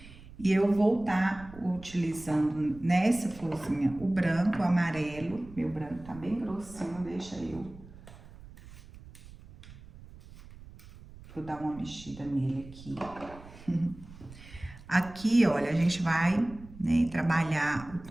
E eu vou estar utilizando nessa florzinha o branco, o amarelo. Meu branco tá bem grossinho, deixa eu dar uma mexida nele aqui. Aqui, olha, a gente vai, né, trabalhar o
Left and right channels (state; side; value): noise; right; rumble, 18 dB below the sound